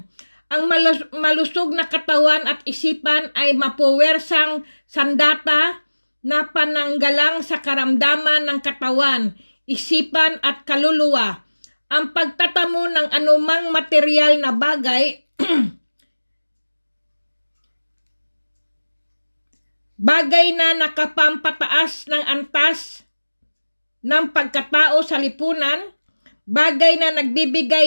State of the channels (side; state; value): both; inverted; correlation -1.00